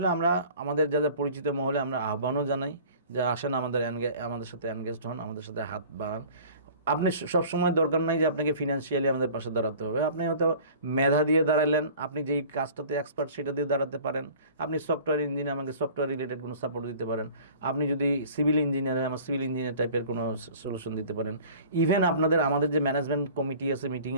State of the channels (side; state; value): both; inverted; correlation -0.46